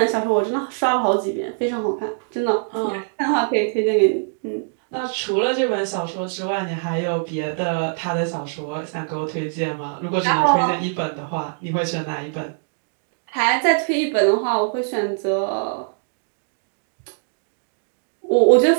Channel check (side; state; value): left; silent; digital silence